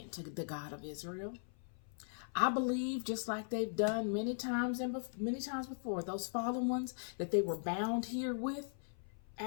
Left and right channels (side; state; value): right; silent; 52 dB below the other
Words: to the God of Israel. I believe, just like they've done many times before, those fallen ones that they were bound here with